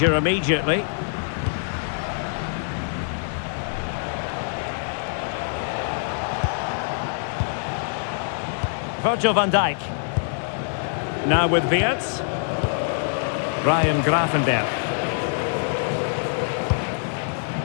immediately. Virgil van Dijk. Now with Weerts. Ryan Gravenberg.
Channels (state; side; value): silent; right; digital silence